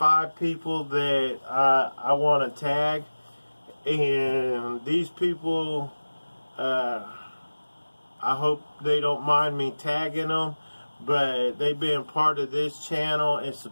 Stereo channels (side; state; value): both; inverted; correlation -1.00